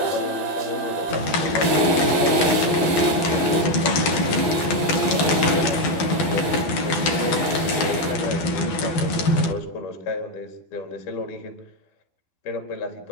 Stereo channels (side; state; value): right; late; 12 ms